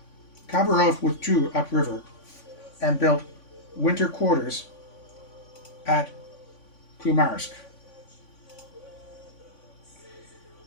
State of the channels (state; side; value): late; right; 3.5 ms